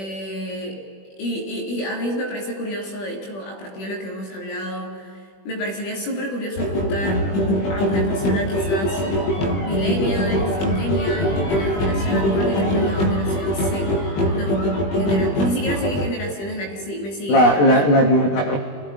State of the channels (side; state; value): right; late; 20 ms